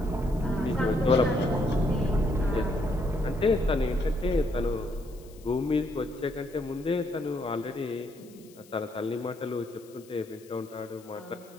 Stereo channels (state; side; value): noise; left; hiss, 25 dB below the sound